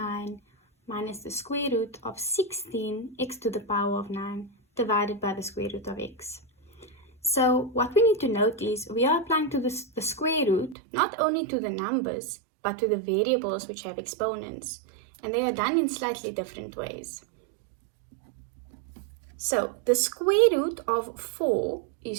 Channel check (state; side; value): drops out; left; at 10.8 s